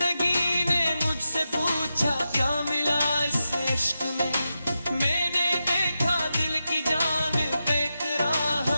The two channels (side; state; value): both; inverted; correlation -0.90